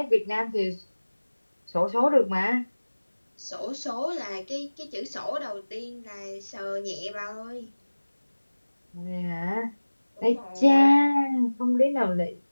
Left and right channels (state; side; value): inverted; both; correlation -1.00